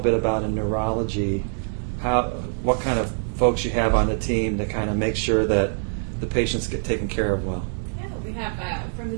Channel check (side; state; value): left; silent; 59 dB below the other